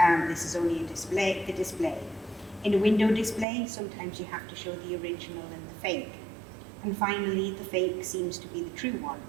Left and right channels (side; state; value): left; drops out; at 3.5 s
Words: This is only a display. In a window display, sometimes you have to show the original and the fake. And finally, the fake seems to be the true one.